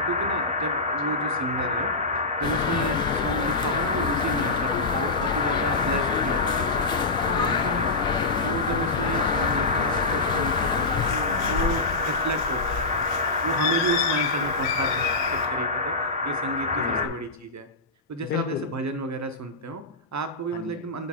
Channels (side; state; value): right; quieter; 3.1 dB